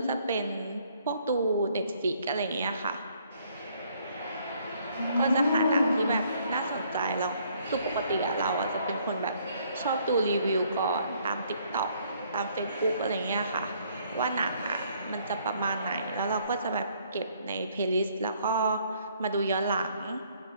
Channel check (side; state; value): both; inverted; correlation -0.65